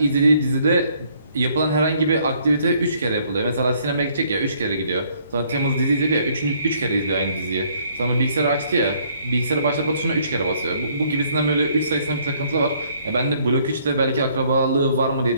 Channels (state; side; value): inverted; both; correlation -0.64